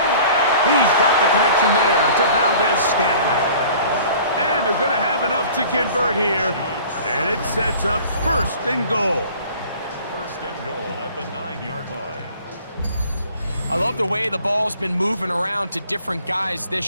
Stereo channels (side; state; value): both; inverted; correlation -0.48